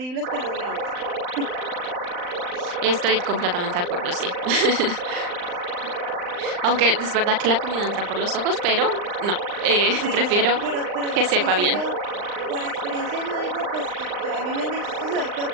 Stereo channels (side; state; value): left; late; 39 ms